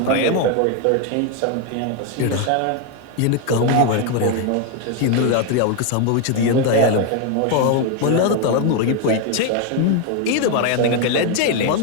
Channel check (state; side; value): different; both; correlation 0.01